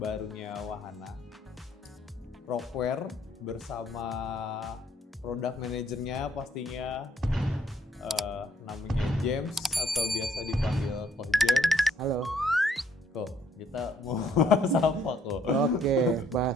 Wahana, Rockware, bersama produk manajernya pastinya namanya James atau biasa dipanggil Coach James. Halo. Kok kita mau bahas apa kok? Oke,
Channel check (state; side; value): normal; both; correlation 0.66